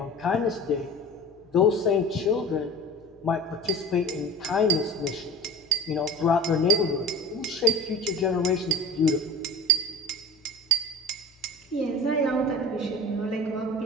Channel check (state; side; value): normal; both; correlation 0.36